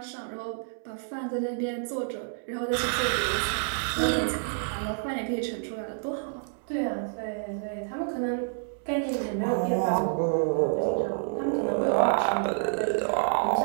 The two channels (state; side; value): silent; left; 59 dB below the other